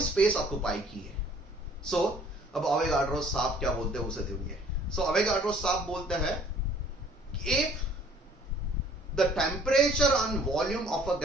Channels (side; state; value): both; normal; correlation 0.56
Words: स्पेस ऑक्यूपाई की है। सो अब अवेगाड्रो साहब क्या बोलते हैं उसे सुनिए। सो अवेगाड्रो साहब बोलते हैं कि if the temperature and volume of a